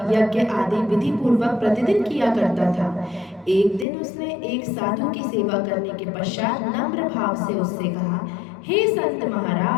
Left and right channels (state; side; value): drops out; right; at 3.9 s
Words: यज्ञ आदि विधि पूर्वक प्रतिदिन किया करता था। एक दिन उसने एक साधु की सेवा करने के पश्चात नम्र भाव से उससे कहा, हे संत